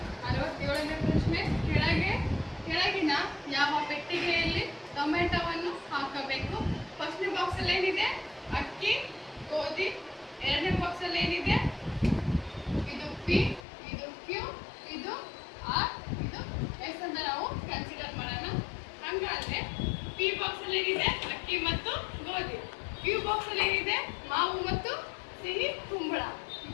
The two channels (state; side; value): drops out; right; at 13.7 s